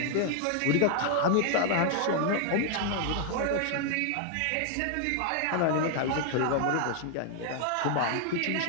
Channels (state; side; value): different; both; correlation 0.00